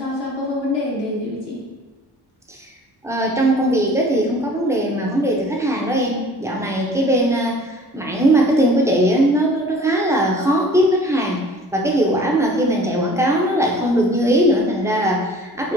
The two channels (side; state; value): both; normal; correlation 0.49